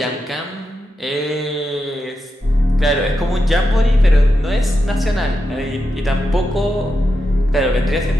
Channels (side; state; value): both; normal; correlation 0.87